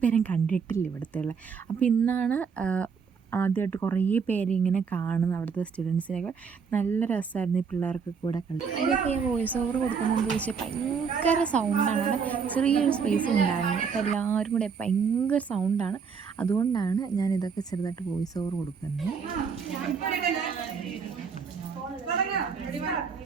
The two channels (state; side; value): quieter; left; 6.0 dB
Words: പേരും കണ്ടിട്ടില്ല ഇവിടുത്തെ ഉള്ള. അപ്പോൾ ഇന്നാണ് ആദ്യമായിട്ട് കുറേ പേര് ഇങ്ങനെ കാണുന്നത്, അവിടുത്തെ സ്റ്റുഡൻസിനൊക്കെ. നല്ല രസമായിരുന്നു ഈ പിള്ളേർക്ക് കൂടെ കളി. ഇതൊക്കെ ഞാൻ വോയിസ് ഓവർ കൊടുക്കുന്നതെന്ന് ചോദിച്ചാൽ ഭയങ്കര സൗണ്ടാണ്. അവിടെ ചെറിയൊരു സ്പേസ് ഉണ്ടായിരുന്നു. അപ്പോൾ എല്ലാവരും കൂടെ ഭയങ്കര സൗണ്ടാണ്. അതുകൊണ്ടാണ് ഞാൻ ഇതൊക്കെ ചെറുതായിട്ട് വോയിസ് ഓവർ കൊടുക്കുന്നത്.